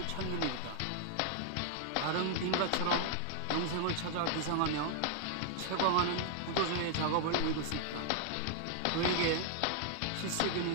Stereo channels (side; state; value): both; different; correlation 0.00